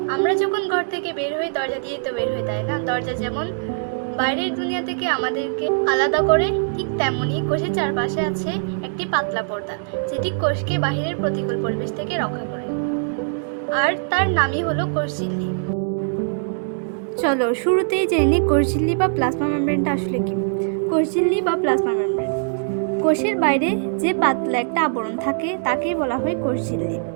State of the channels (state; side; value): silent; left; digital silence